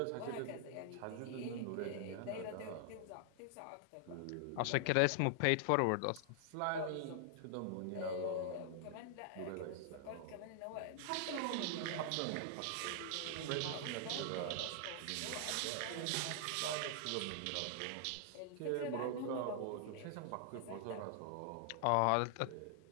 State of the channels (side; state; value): both; different; correlation 0.00